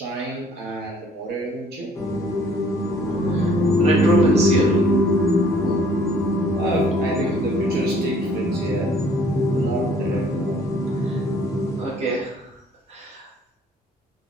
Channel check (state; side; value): normal; both; correlation 0.58